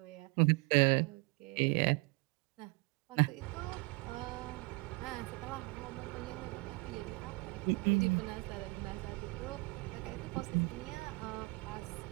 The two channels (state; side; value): quieter; left; 27.6 dB